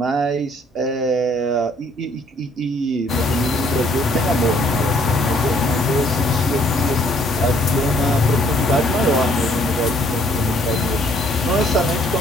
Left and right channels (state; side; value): normal; both; correlation 0.63